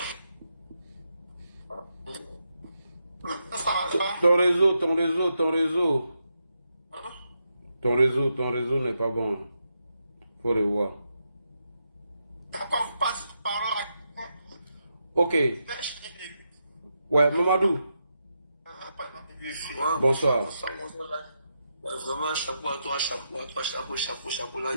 Ton réseau n'est pas bon. Faut revoir. Ok. Ouais, Mamadou. Bonsoir. Vraiment, chapeau à toi, chapeau. Là,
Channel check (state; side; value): inverted; both; correlation -0.84